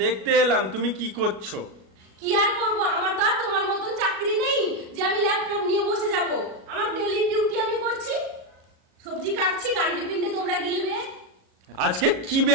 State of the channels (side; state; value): left; late; 37 ms